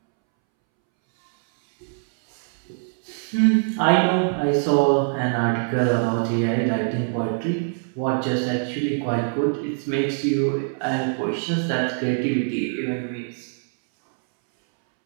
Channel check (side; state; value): left; silent; 63 dB below the other